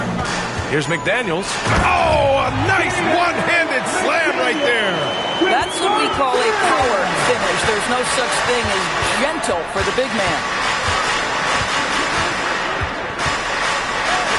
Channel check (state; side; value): identical; both; correlation 1.00